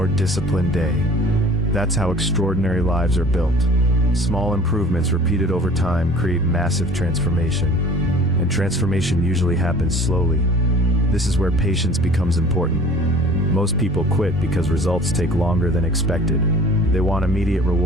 disciplined day. That's how extraordinary lives are built. Small improvements repeated over time create massive transformation, and transformation usually happens slowly. This is where patience becomes important. Most people quit because results take longer than expected. They want immediate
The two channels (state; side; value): normal; both; correlation 0.47